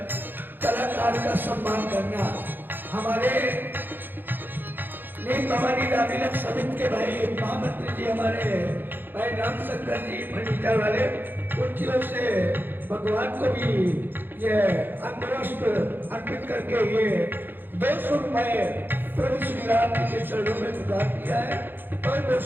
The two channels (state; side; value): late; left; 0.095 ms